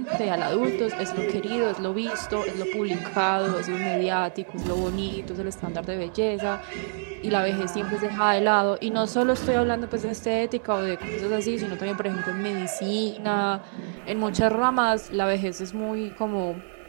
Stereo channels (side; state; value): left; silent; 61 dB below the other